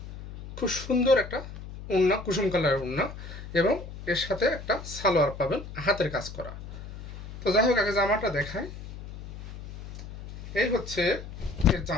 খুব সুন্দর একটা ওড়না, কুসুম কালারের ওড়না, এবং এর সাথে একটা সালোয়ার পাবেন হাতের কাজ করা। তো যাই হোক, আগে জামাটা দেখাই। এই হচ্ছে এর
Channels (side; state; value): left; noise; hum, 12 dB below the sound